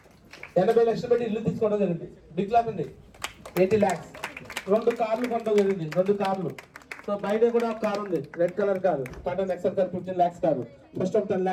80 లక్షలు పెట్టి ఇల్లు తీసుకోవడం జరిగింది. బిగ్ క్లాస్ అండి. 80 lakhs. 2 కార్లు కొనడం జరిగింది. 2 కార్లు. సో బయట కూడా ఒక కార్ ఉంది, red colour car, Tata Nexon car, 15 lakhs car, first of 10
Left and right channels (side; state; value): both; identical; correlation 1.00